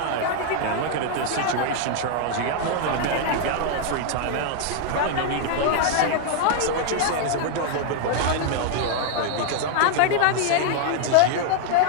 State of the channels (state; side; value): different; both; correlation 0.00